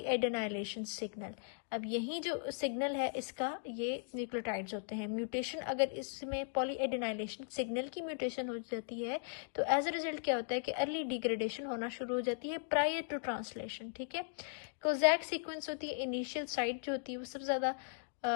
signal. अब यही जो सिग्नल है इसका ये न्यूक्लियोटाइड्स होते हैं। म्यूटेशन अगर इसमें पॉलीएडेनाइलेशन सिग्नल की म्यूटेशन हो जाती है तो एज अ रिजल्ट क्या होता है कि अर्ली डिग्रेडेशन होना शुरू हो जाती है प्रायर टू ट्रांसलेशन। ठीक है, कोजैक सीक्वेंस होती है, इनिशियल साइट जो होती है वो सबसे ज्यादा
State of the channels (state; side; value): silent; right; digital silence